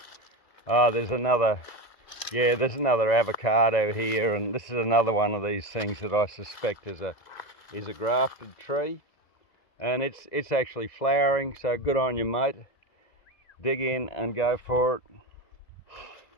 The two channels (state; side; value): late; right; 2.0 ms